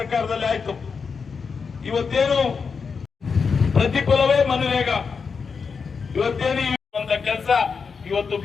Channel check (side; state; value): right; quieter; 5.5 dB